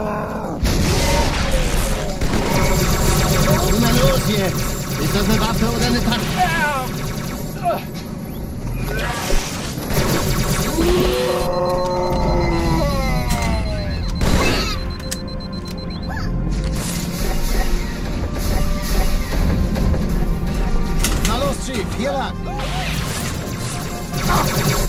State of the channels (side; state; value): both; identical; correlation 1.00